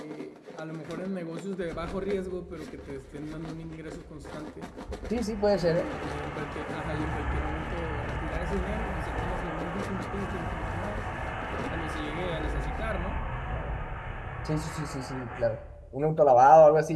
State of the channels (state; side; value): identical; both; correlation 1.00